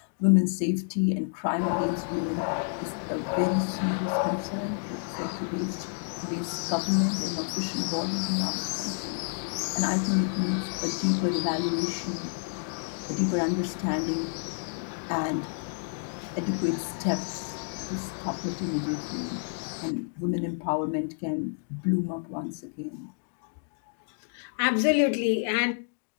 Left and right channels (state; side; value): silent; right; digital silence